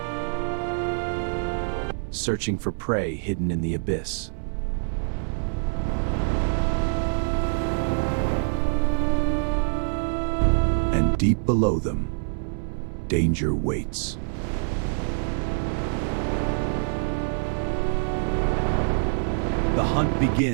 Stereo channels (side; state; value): left; silent; 61 dB below the other